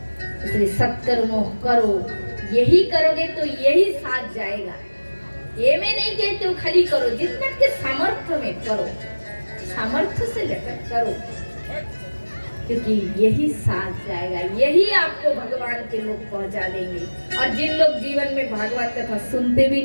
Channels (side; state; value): both; inverted; correlation -1.00